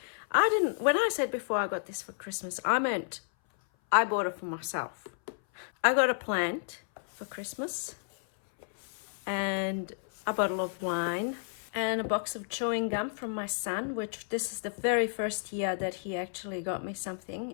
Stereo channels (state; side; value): silent; right; 57 dB below the other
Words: When I said before I got this for Christmas, I meant I bought it for myself. I got a plant for Christmas, and a bottle of wine, and a box of chewing gum from my son, which this is the very first year that he actually got me something,